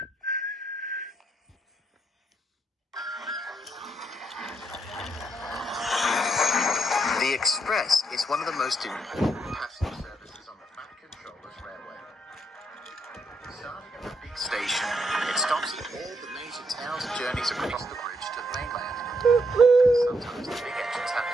The Express is one of the most important passenger services on the Fat Controllers Railway. Starting at the big station, it stops at all the major towns and journeys across the bridge to the mainland. Sometimes the big engines have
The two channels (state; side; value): normal; both; correlation 0.76